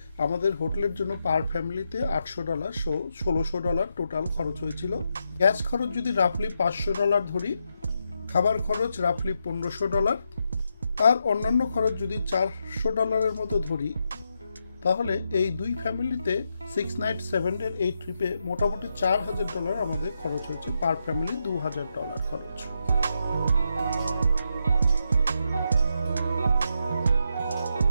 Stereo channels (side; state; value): both; inverted; correlation -0.83